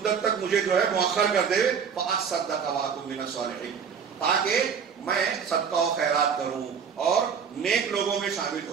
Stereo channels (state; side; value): quieter; left; 6.8 dB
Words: تک مجھے جو ہے مؤخر کر دے، فاصدق واکن من الصالحین، تاکہ میں صدقہ و خیرات کروں اور نیک لوگوں میں شامل